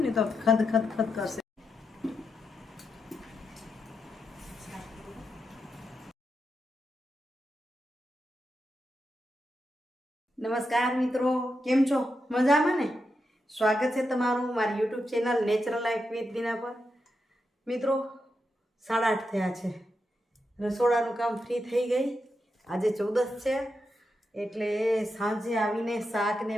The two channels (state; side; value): normal; both; correlation 0.86